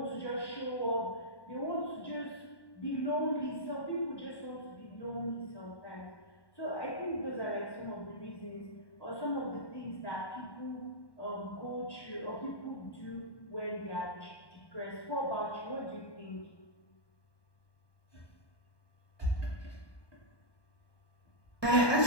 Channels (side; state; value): right; late; 1.1 ms